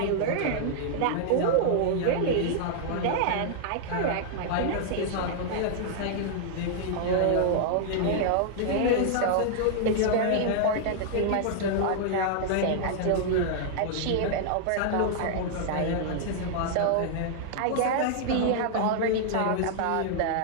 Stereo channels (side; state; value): both; different; correlation -0.01